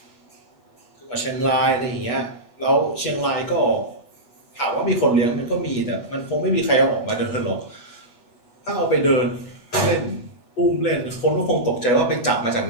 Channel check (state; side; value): late; right; 8.2 ms